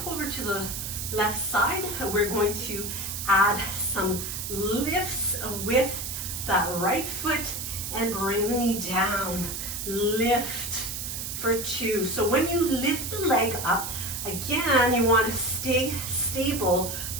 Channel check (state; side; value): noise; right; hiss, 5 dB below the sound